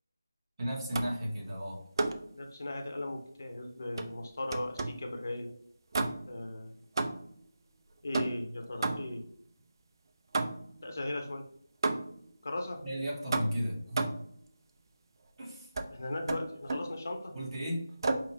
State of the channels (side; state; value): both; inverted; correlation -0.90